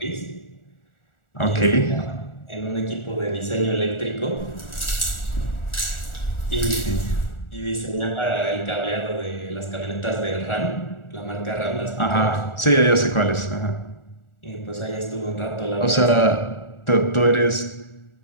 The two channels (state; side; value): late; right; 1.4 ms